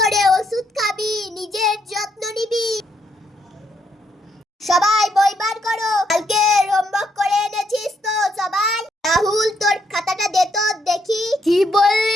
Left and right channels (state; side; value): normal; both; correlation 0.75